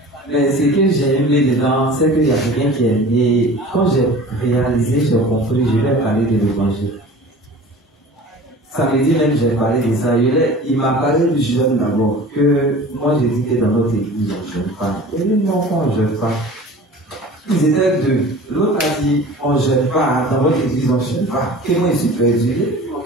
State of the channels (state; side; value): normal; both; correlation 0.41